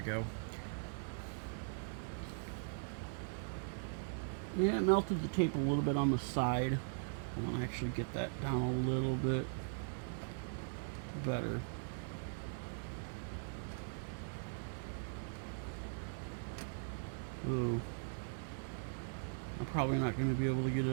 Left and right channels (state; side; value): silent; left; digital silence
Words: go. Yeah, it melted the tape a little bit on the side. I want to actually get that down a little bit better. Ooh. I'm probably not going to be able to get it